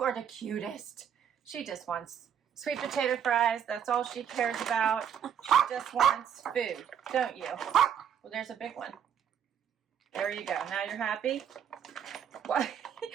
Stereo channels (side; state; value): left; quieter; 8.6 dB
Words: are the cutest. She just wants sweet potato fries. That's all she cares about. She just wants food, don't you? Well, there's a big one. There you go. Now you're happy?